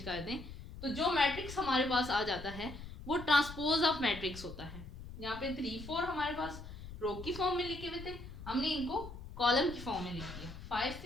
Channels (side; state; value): left; noise; rumble, 12 dB below the sound